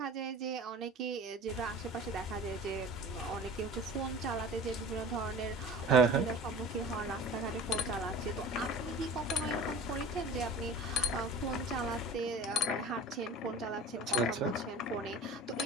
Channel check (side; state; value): both; normal; correlation 0.40